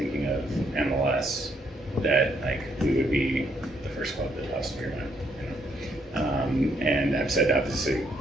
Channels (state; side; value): normal; both; correlation 0.72